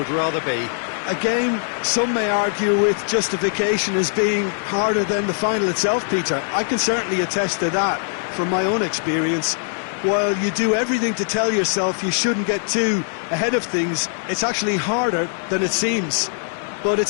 rather be. A game some may argue with justification as being harder than the final itself, Peter. I can certainly attest to that from my own experience. While you do everything to tell yourself you shouldn't get too ahead of things, it's actually harder than it seems. But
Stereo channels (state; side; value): silent; right; digital silence